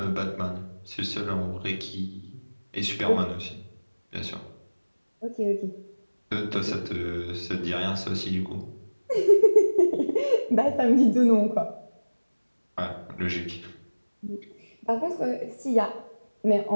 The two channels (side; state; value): both; inverted; correlation -1.00